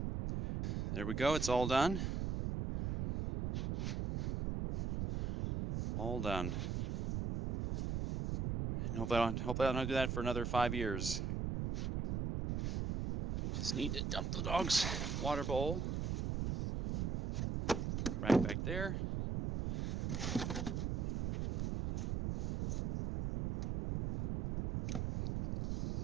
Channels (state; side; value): noise; right; rumble, 1 dB below the sound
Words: There we go, it's all done. All done. And hopefully I don't do that for another 5 years. Just need to dump the dog's water bowl right back there.